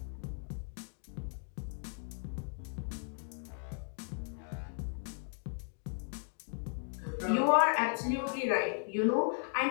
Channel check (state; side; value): silent; right; 54 dB below the other